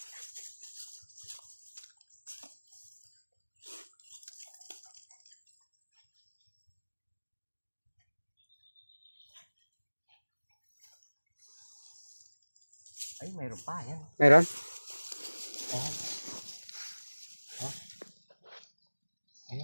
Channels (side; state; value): both; inverted; correlation -1.00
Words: Ay, mayroon pa yan. Meron? Ayan.